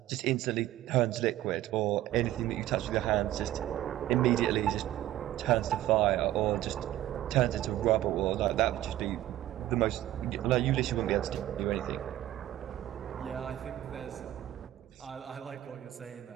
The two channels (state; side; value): quieter; left; 13.9 dB